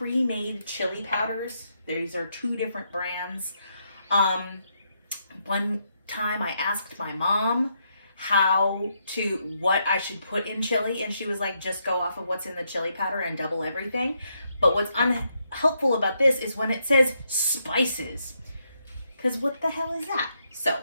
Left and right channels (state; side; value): inverted; both; correlation -0.78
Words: chili powders. These are 2 different brands. One time I asked my mom what I should put in chili, and she was like, just go off of what's in the chili powder and double everything. But what's unhelpful about this is when it says spices, because what the hell is that? So